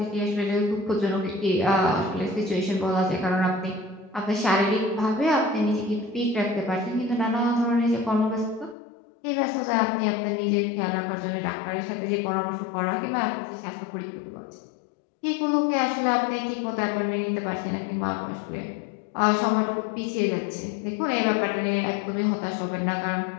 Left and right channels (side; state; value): right; drops out; at 8.8 s